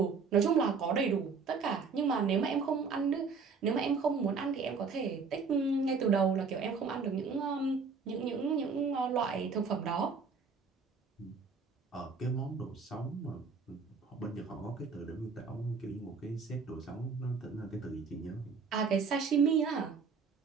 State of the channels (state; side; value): quieter; left; 5.1 dB